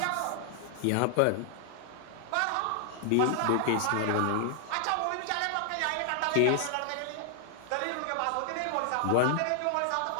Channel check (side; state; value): both; different; correlation 0.00